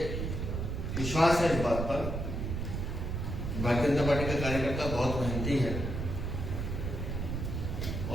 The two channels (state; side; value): noise; right; rumble, 3 dB below the sound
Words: विश्वास है इस बात पर, भारतीय जनता पार्टी का कार्यकर्ता बहुत मेहनती है